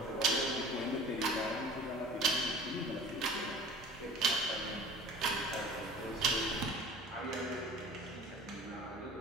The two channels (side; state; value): both; normal; correlation 0.42